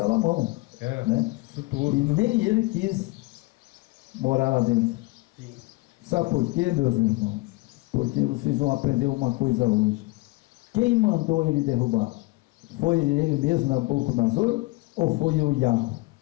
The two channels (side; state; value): right; quieter; 22.7 dB